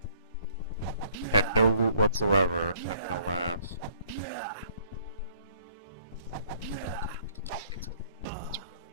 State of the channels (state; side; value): inverted; both; correlation -0.60